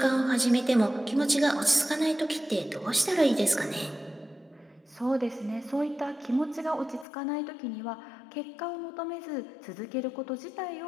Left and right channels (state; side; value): drops out; right; at 7.1 s